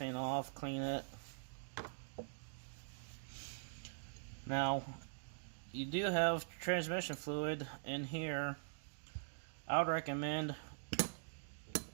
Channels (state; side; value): silent; left; digital silence